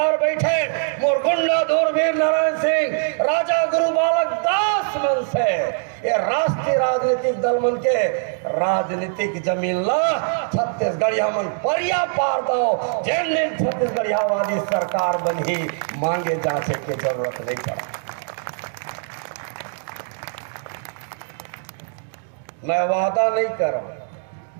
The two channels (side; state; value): left; silent; 61 dB below the other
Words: बैठे मोर गुंडा दूरबीर नारायण सिंह, राजा गुरु बालक दास मन से ये राष्ट्रीय राजनीतिक दल मन के राजनीतिक जमीन ला छत्तीसगढ़िया मन परिया पार दो, जिन दिन छत्तीसगढ़ियावादी सरकार बनी मांगे जांचे की जरूरत नहीं पड़ा। मैं वादा नहीं कर रहा,